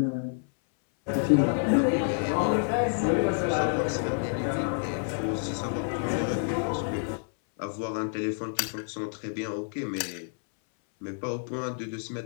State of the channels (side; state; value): right; silent; 59 dB below the other